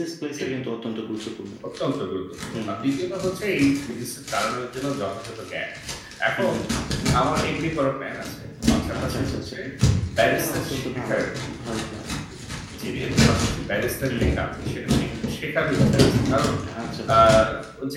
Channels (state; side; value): identical; both; correlation 1.00